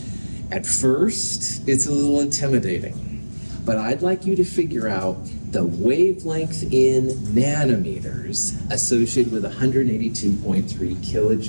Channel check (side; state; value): both; inverted; correlation -1.00